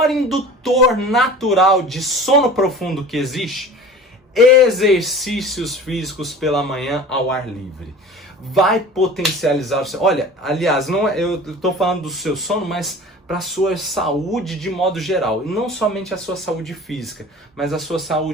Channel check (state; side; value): normal; both; correlation 0.40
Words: indutor natural de sono profundo que existe? Exercícios físicos pela manhã ao ar livre. Vai potencializar o seu... Olha, aliás, eu estou falando do seu sono, mas para a sua saúde de modo geral. E não somente a sua saúde física, mas a sua